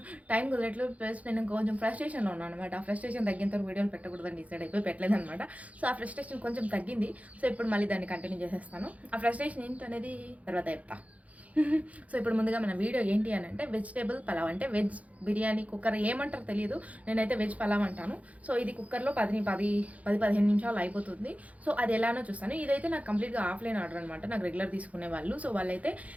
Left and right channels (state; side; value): late; left; 0.068 ms